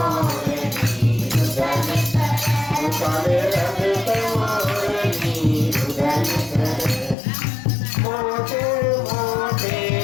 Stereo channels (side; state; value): right; drops out; at 7.2 s